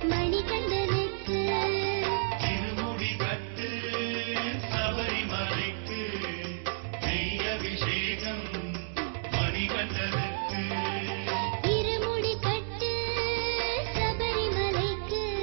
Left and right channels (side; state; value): left; silent; digital silence